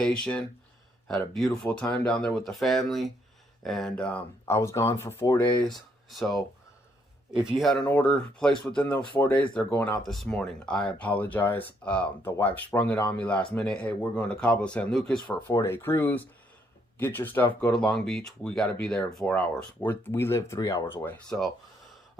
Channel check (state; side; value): normal; both; correlation 0.72